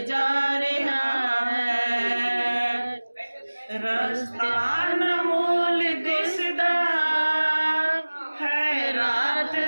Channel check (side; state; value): both; inverted; correlation -1.00